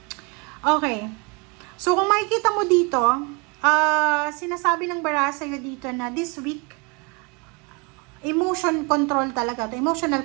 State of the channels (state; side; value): quieter; left; 30.2 dB